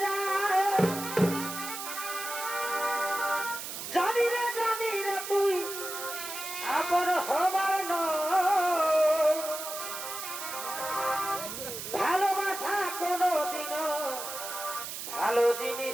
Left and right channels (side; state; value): right; noise; hiss, 7 dB below the sound